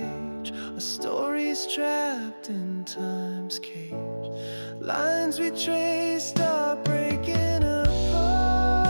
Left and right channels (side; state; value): both; inverted; correlation -1.00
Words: a story's trapped in time's cage. Lines we traced are breaking apart.